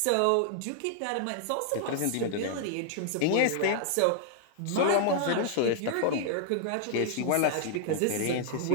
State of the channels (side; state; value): both; different; correlation -0.01